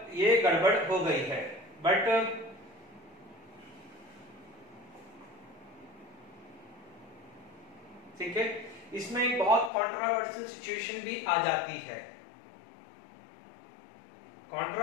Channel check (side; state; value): right; drops out; at 9.7 s